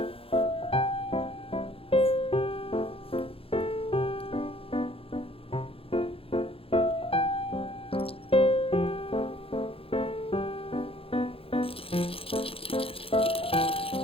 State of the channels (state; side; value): late; right; 0.27 ms